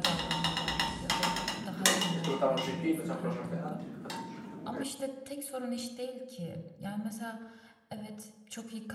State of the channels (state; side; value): identical; both; correlation 1.00